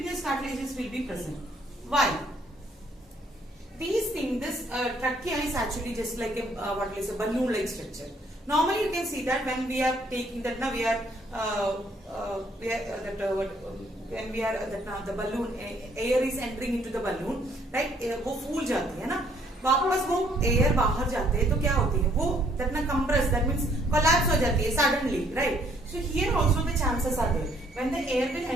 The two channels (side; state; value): both; normal; correlation 0.65